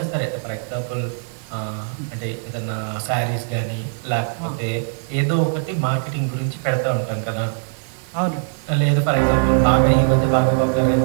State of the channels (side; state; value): left; silent; digital silence